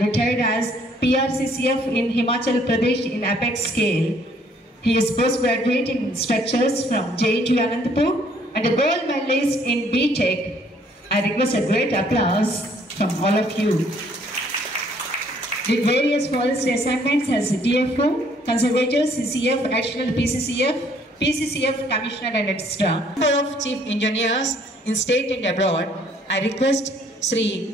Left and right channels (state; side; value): normal; both; correlation 0.63